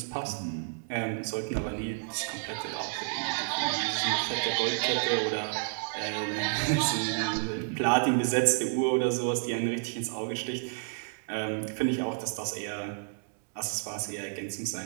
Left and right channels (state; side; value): silent; left; digital silence